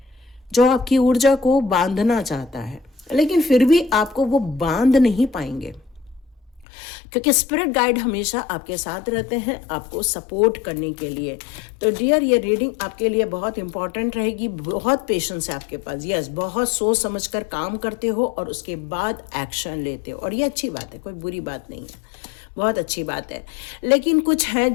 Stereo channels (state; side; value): drops out; right; at 6.7 s